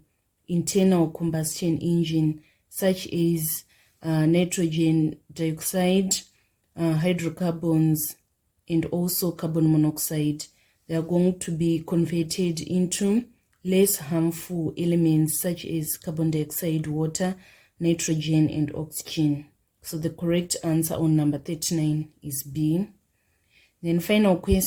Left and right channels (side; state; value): both; identical; correlation 1.00